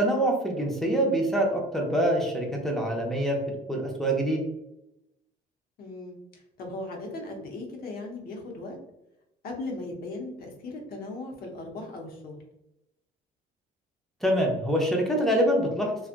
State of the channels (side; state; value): both; normal; correlation 0.45